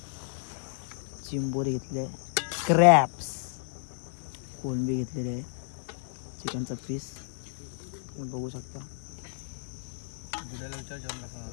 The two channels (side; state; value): right; silent; digital silence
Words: चिंबोरी घेतले, क्रॅप्स, कोलंबी घेतलेले आहे, चिकनचा पीस तुम्ही बघू शकता.